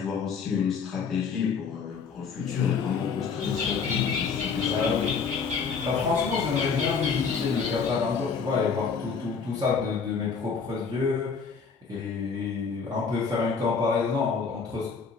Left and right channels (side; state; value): right; quieter; 5.6 dB